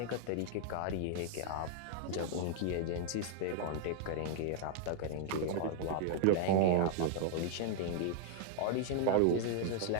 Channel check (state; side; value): different; both; correlation -0.01